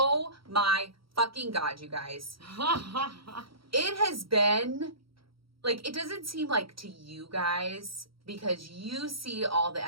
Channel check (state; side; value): late; left; 0.75 ms